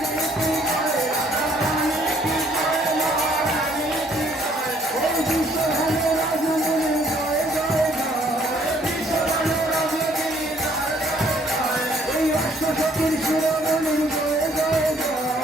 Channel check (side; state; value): both; normal; correlation 0.63